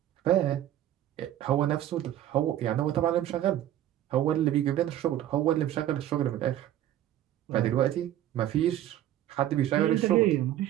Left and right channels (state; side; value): quieter; left; 12.4 dB